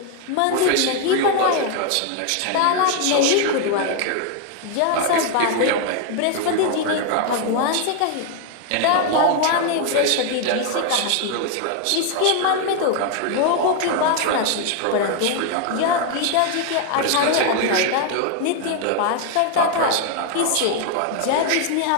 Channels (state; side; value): different; both; correlation 0.01